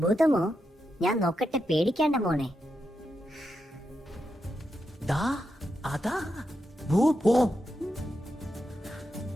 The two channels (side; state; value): both; normal; correlation 0.86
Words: ഭൂതമോ? ഞാൻ നോക്കട്ടെ, പേടിക്കേണ്ട മോനെ. ദാ അതാ ഭൂതം.